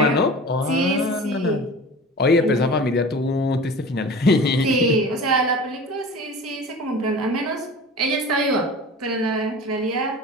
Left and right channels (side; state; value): both; normal; correlation 0.37